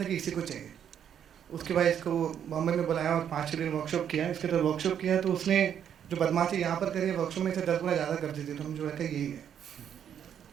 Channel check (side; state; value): left; quieter; 9.0 dB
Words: कि इसी को चाहिए। उसके बाद इसको बॉम्बे में बुलाया और 5 दिन वर्कशॉप किया। इसके बाद वर्कशॉप किया तो उसने जो बदमाशी यहाँ पर करी है, वर्कशॉप में से 10 गुना ज़्यादा कर दी थी, तो मुझे लगा यही है।